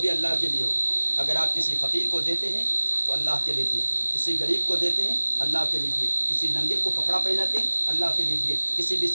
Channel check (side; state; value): both; inverted; correlation -1.00